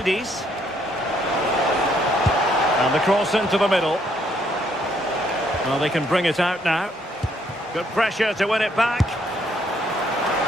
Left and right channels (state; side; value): normal; both; correlation 0.69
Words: And the cross into the middle. Well, they can bring it out now. Good pressure to win it back.